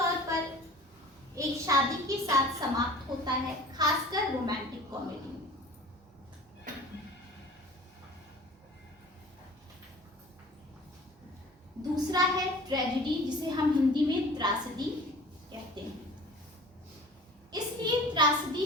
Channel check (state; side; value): normal; both; correlation 0.43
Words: पर एक शादी के साथ समाप्त होता है, खासकर रोमांटिक कॉमेडी में। दूसरा है ट्रेजेडी, जिसे हम हिंदी में त्रासदी कहते हैं। इसलिए त्रासदी